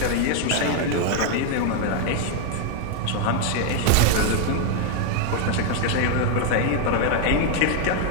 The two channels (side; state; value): both; different; correlation 0.01